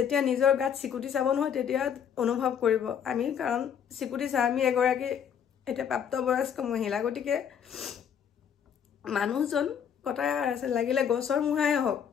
নিজৰ গাত চিকুটি চাব নহয় তেতিয়া অনুভৱ কৰিব আমি কাৰণ চিকুটি চা আমি এগৰাকী এটা প্ৰাপ্তবয়স্ক মহিলা গতিকে মানুহজন কথা আছে লাগিলে গছৰ মুহাই হওক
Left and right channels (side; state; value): right; quieter; 8.2 dB